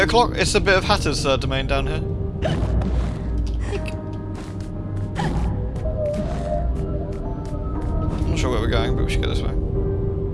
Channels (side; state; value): both; identical; correlation 1.00